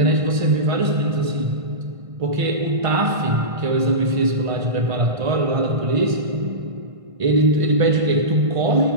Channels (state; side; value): late; left; 1.5 ms